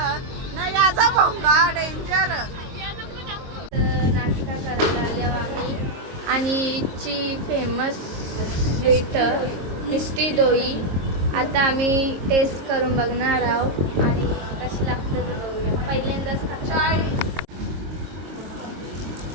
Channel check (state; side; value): late; left; 22 ms